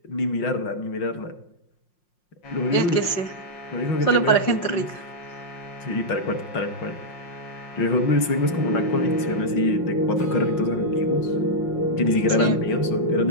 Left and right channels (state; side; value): late; right; 5.6 ms